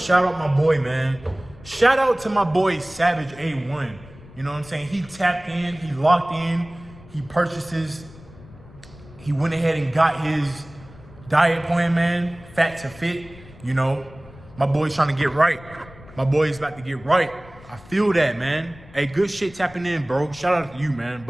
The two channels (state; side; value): noise; left; rumble, 20 dB below the sound